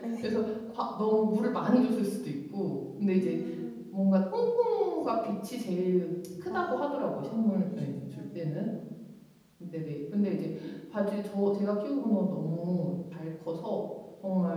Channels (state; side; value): identical; both; correlation 1.00